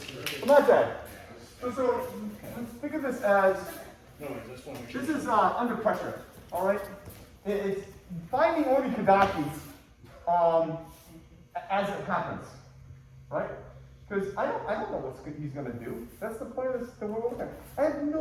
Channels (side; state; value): both; identical; correlation 1.00